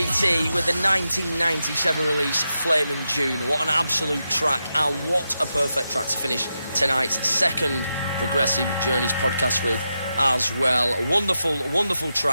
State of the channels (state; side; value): inverted; both; correlation -0.88